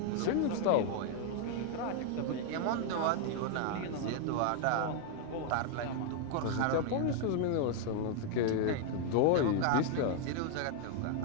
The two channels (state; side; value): different; both; correlation 0.00